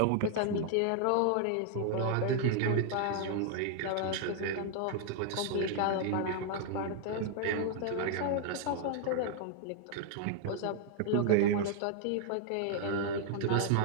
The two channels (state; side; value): different; both; correlation 0.00